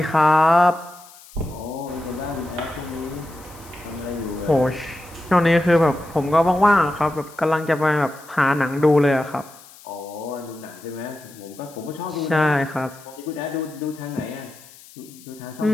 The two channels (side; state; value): left; noise; hiss, 22 dB below the sound